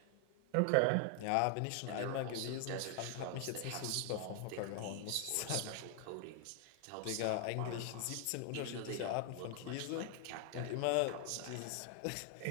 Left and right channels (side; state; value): both; different; correlation 0.00